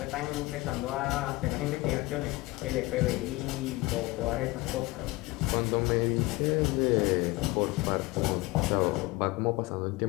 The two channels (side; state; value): right; quieter; 21.3 dB